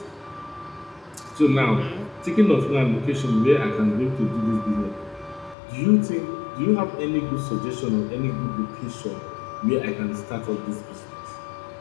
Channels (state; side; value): drops out; right; at 5.6 s